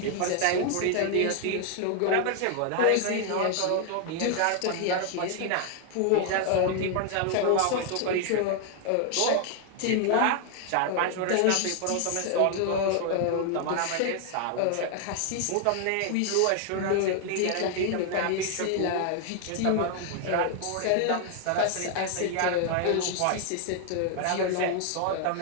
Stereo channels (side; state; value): both; different; correlation 0.00